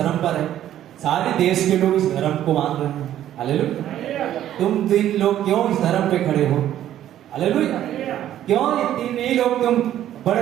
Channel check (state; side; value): quieter; left; 11.9 dB